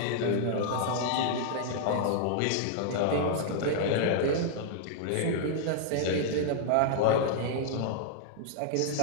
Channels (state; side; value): different; both; correlation -0.01